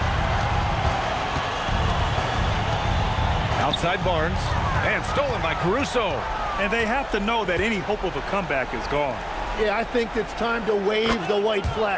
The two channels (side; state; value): both; identical; correlation 1.00